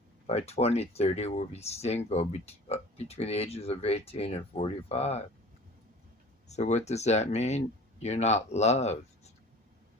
by 2030 will be single between the ages of 18 and 45. So what does that mean? You're not loved.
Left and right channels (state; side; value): normal; both; correlation 0.43